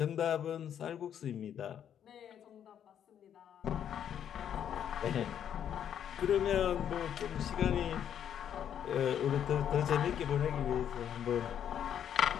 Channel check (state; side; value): quieter; right; 9.3 dB